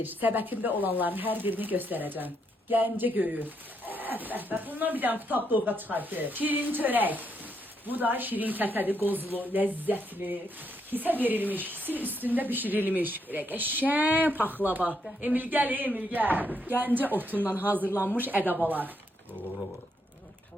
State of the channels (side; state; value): both; normal; correlation 0.77